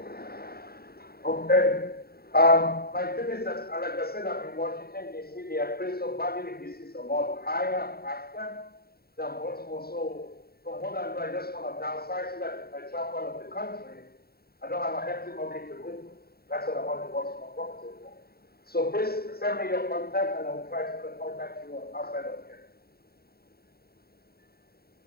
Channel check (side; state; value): right; late; 0.45 ms